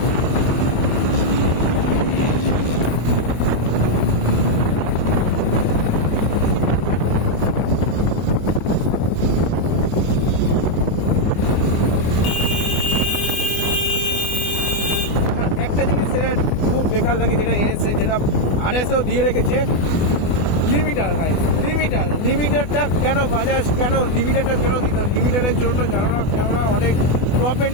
একটা জিনিস সেটা খুব বেকার লাগে, যেটা এনেছে, যেটা RSও দিয়ে রেখেছে, লিমিটার। ভাই লিমিটারটা কেন বাজাজ, কেন লিমিটারটা কেন দিত? লিমিটারের জন্য জানো না, কেননা অনেক টপ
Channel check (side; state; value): right; late; 24 ms